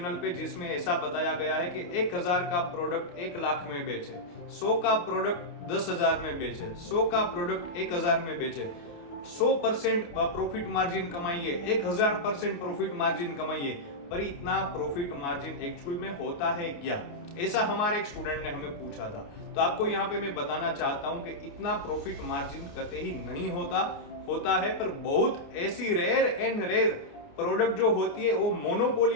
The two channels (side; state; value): right; late; 29 ms